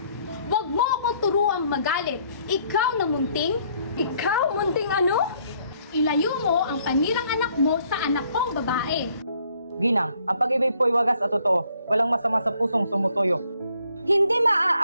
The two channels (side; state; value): both; inverted; correlation -0.66